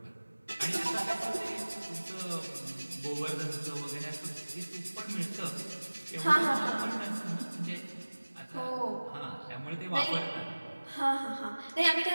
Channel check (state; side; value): inverted; both; correlation -1.00